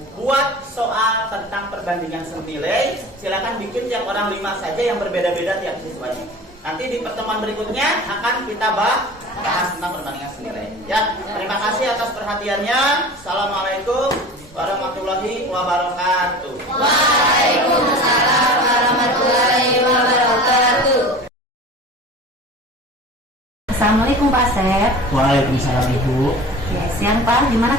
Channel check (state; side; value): normal; both; correlation 0.38